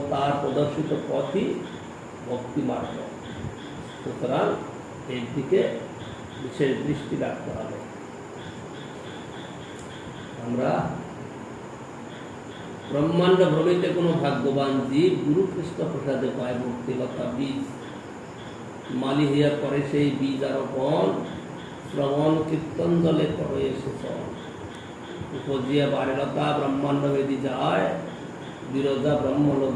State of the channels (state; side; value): identical; both; correlation 1.00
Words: তার প্রদর্শিত পথই ভক্তি মার্গ। সুতরাং এর দিকে বিশেষ দৃষ্টি রাখতে হবে। আমরা ব্রহ্মাণ্ড ভ্রমিতে কোনো ভাগ্যবান জীব গুরু কৃষ্ণ প্রসাদে পায় ভক্তিলতা বীজ। মালি হইয়া করে সেই বীজ আরোপণ, শ্রবণ কীর্তন দলে করে শোষণ। উপজিয়া বারেলতা ব্রহ্মাণ্ড বেদি যায়, বিরোধা ব্রহ্মলোক